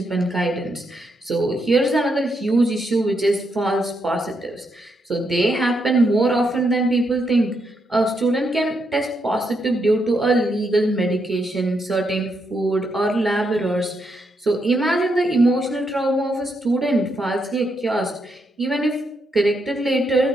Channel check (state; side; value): normal; both; correlation 0.80